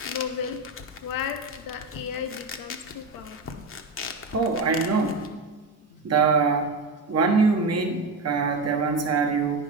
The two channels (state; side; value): quieter; left; 3.3 dB